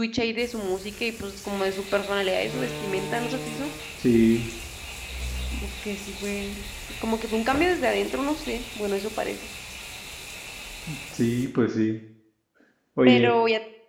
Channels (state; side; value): identical; both; correlation 1.00